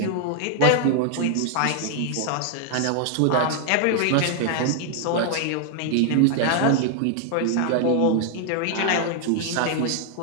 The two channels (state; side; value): different; both; correlation 0.00